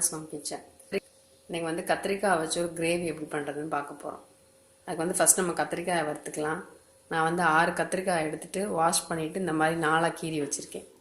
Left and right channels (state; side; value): identical; both; correlation 1.00